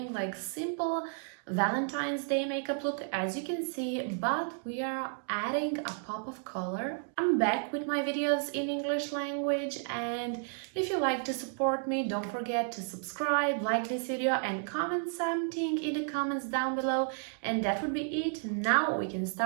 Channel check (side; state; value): left; silent; 56 dB below the other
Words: like simple Valentine's Day makeup look, as you can see, but we are adding a pop of color. I'm back with my videos in English language, and if you like to support me, don't forget to subscribe, like this video and comment something in the comments down below. And that would be it. Now we can